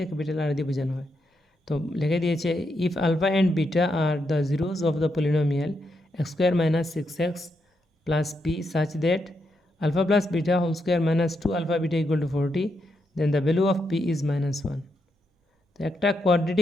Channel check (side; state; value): both; normal; correlation 0.81